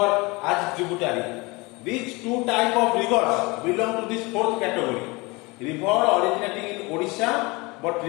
as tributary. These 2 types of rivers belong to this 4th category. River originating in Odisha but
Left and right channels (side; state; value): right; quieter; 25.2 dB